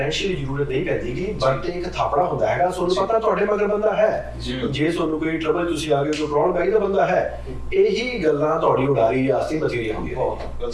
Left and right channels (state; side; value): identical; both; correlation 1.00